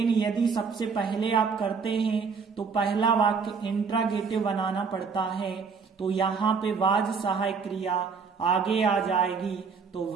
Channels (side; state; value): left; quieter; 5.4 dB